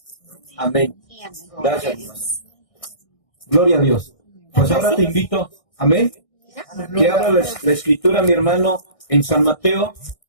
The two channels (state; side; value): late; right; 1.6 ms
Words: Amén. Amén. Gracias, hermano. Gloria a Dios. Pues ahora te invito, amén, que abra la escritura, mi hermano, en San Mateo,